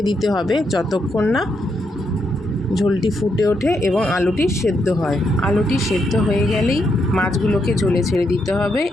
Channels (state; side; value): normal; both; correlation 0.79